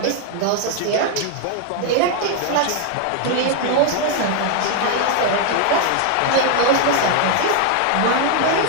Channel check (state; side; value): different; both; correlation 0.01